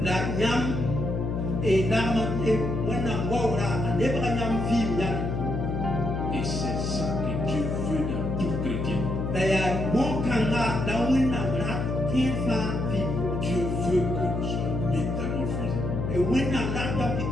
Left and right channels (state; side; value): noise; left; hum, 2 dB below the sound